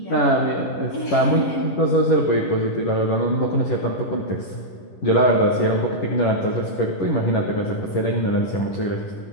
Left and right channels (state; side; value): late; right; 11 ms